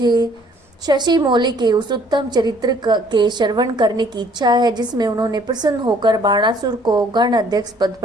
शशि मौली के उस उत्तम चरित्र के श्रवण करने की इच्छा है जिसमें उन्होंने प्रसन्न होकर बाणासुर को गण अध्यक्ष पद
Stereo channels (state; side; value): normal; both; correlation 0.60